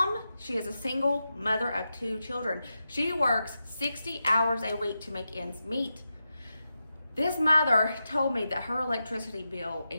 she is a single mother of 2 children. She works 60 hours a week to make ends meet. This mother told me that her electricity bill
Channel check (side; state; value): both; inverted; correlation -0.89